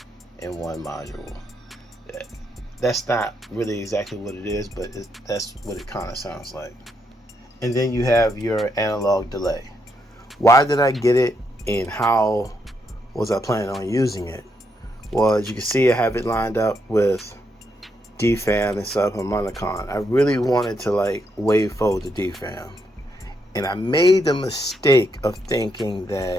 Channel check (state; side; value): normal; both; correlation 0.78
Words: module. That's not really exactly what it is, but that's what it kind of sounds like. And then you have your analog delay. Why did I get it, and how was I planning on using it? Well, as you can see, I have it lined up with DFAM and subharmonicon. I really wanted to wavefold the DFAM, and I made the mistake of thinking